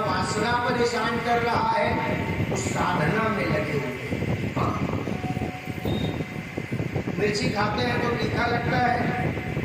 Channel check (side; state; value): both; identical; correlation 1.00